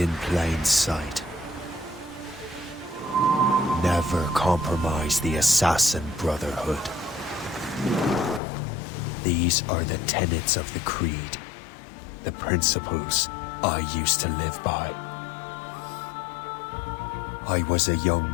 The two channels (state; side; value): drops out; right; at 8.4 s